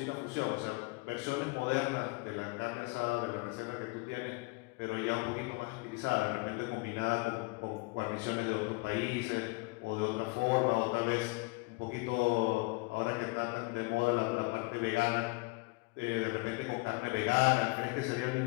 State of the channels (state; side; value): quieter; right; 27.0 dB